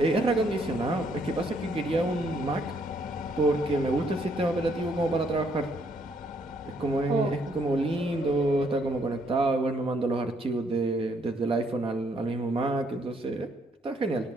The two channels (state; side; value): normal; both; correlation 0.70